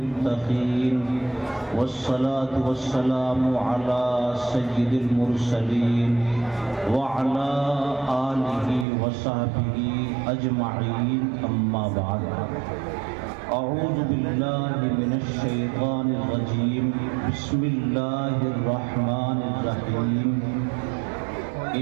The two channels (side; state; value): left; drops out; at 8.8 s